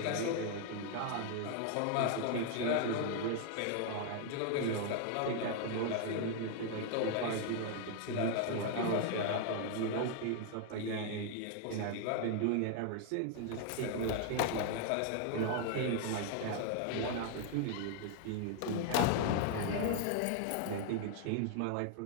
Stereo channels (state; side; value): different; both; correlation 0.00